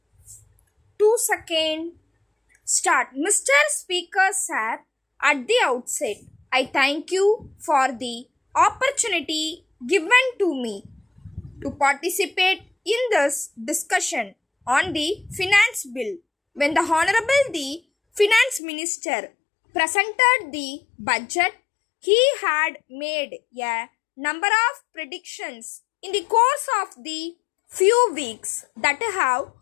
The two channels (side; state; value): right; drops out; at 18.6 s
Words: 2 seconds. Start. Mr. Speaker Sir, at the outset, I thank you for the opportunity given to me to participate in this discussion on the finance bill. When the Honorable the Finance Minister presented the budget, he had made a number of predictions in the course of the few weeks that have